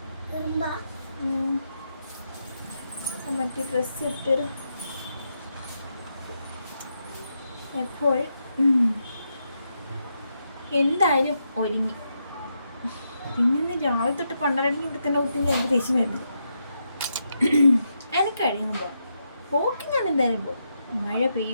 മറ്റേ ഡ്രസ്സ് ഇട്ടൊരു എപ്പോൾ എന്തായാലും ഒരുങ്ങി. പിന്നെ രാവിലെ തൊട്ട് പണ്ടരണെങ്കിൽ ഇവിടെ തന്നെ കുട്ടി എനിക്ക് ദേഷ്യം വരുന്നത്. എനിക്ക് കഴിയുമ്പോൾ പോകാം, പോക്കി ഞാൻ എന്തായാലും പോകും. മഴ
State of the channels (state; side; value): inverted; both; correlation -0.83